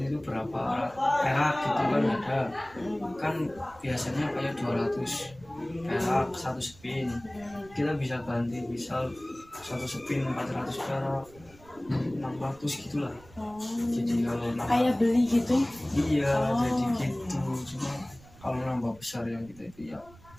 itu berapa perak gitu kan ada kan biasanya kayak 200 perak satu spin kita bisa ganti misal satu spin 400 perak 600 gitulah. Jadi kalau kayak beli gitu? Iya jadi gitu cuma kalau nambah besar yang kita itu ya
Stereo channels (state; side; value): noise; right; rumble, 23 dB below the sound